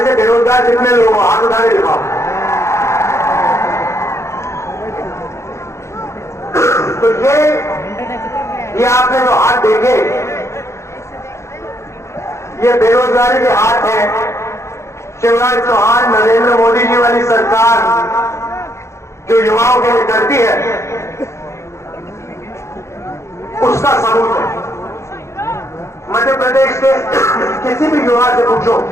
से बेरोजगार जितने लोग हो हाथ उठा के दिखाओ। तो ये आपने जो हाथ देखे, ये बेरोजगारी के हाथ हैं। शिवराज चौहान, नरेंद्र मोदी जी वाली सरकार जो युवाओं के लिए करती है, उसका सबूत है। मध्य प्रदेश के किसी भी युवा से पूछो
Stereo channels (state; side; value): late; right; 0.14 ms